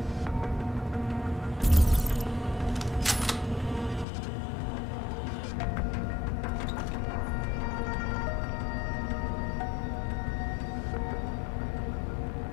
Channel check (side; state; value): right; drops out; at 4.0 s